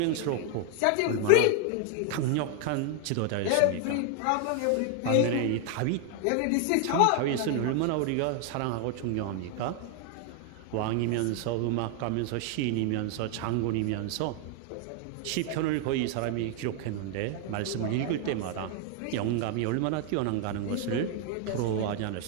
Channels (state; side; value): different; both; correlation 0.00